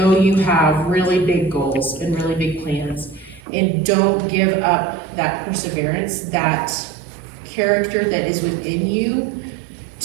you have really big goals and really big plans, and don't give up that perseverance, that character that is within you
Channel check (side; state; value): left; drops out; at 3.4 s